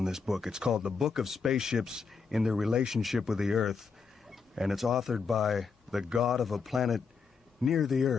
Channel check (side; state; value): right; quieter; 5.3 dB